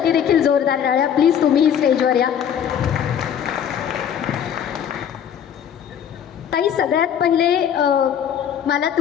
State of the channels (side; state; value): right; quieter; 8.8 dB